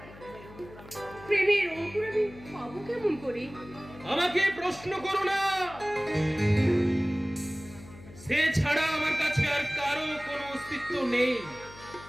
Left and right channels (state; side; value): noise; left; hum, 18 dB below the sound